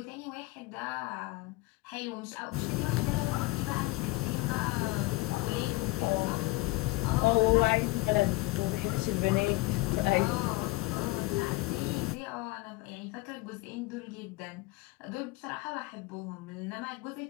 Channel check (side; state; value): right; quieter; 21.6 dB